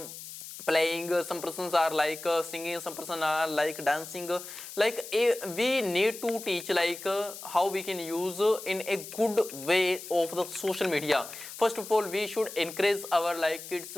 playing, some persons are like singing, some person are like dancing, like we need to teach like how we can use in a good way of the social media. First of all, we should encourage our like kids,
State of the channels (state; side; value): noise; left; hiss, 12 dB below the sound